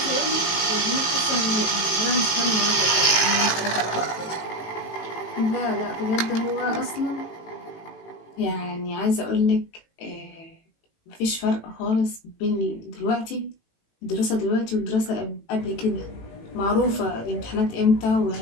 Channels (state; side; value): late; right; 18 ms